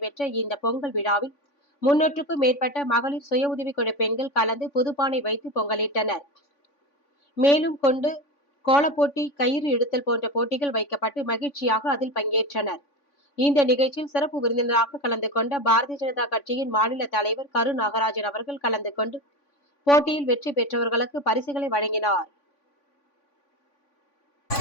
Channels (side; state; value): right; late; 3.5 ms